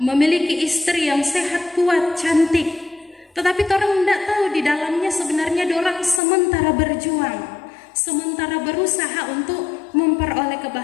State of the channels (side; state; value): right; drops out; at 6.2 s